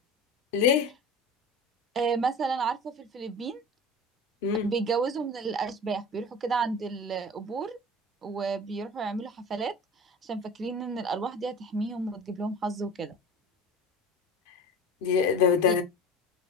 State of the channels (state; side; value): normal; both; correlation 0.36